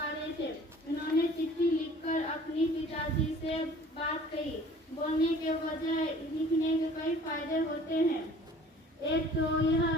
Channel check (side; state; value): both; normal; correlation 0.50